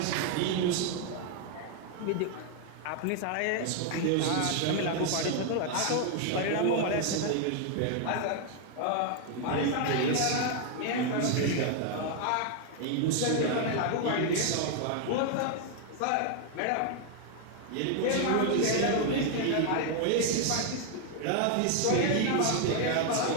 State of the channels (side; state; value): both; different; correlation 0.00